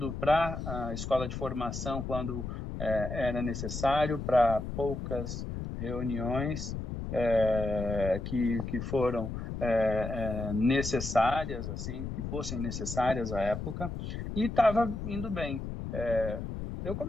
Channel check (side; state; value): left; noise; rumble, 5 dB below the sound